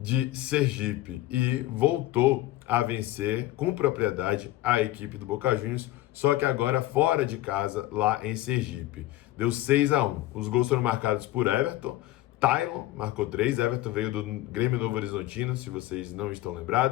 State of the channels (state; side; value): quieter; right; 16.0 dB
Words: Sergipe e voltou a vencer com propriedade a equipe do Boca Juniors, só que agora fora de casa, lá em Sergipe. Deu 6-1. Os gols foram marcados por Everton. Tylon marcou 3, Everton veio do Grêmio Novo Horizontino, se vocês não estão